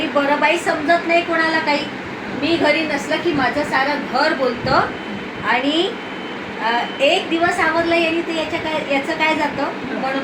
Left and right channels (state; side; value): identical; both; correlation 1.00